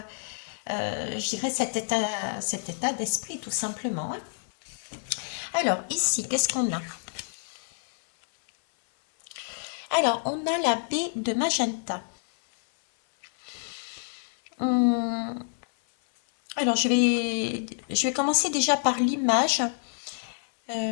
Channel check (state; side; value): silent; right; 57 dB below the other